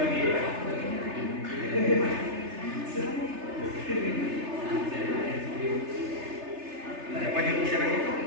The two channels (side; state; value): left; late; 3.3 ms